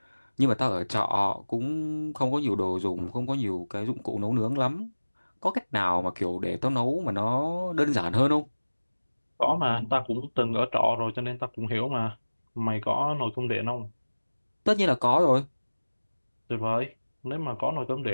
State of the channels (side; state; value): both; inverted; correlation -1.00